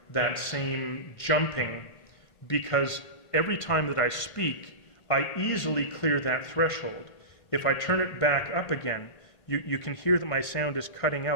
that same jumping, because every time that I speak, I easily clear that threshold. If I turn it back up again, you can hear that my sound is cutting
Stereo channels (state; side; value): late; right; 1.6 ms